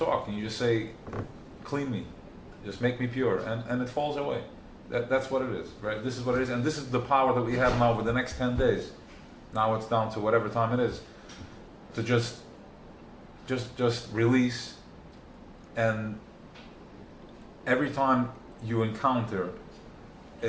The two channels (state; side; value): identical; both; correlation 1.00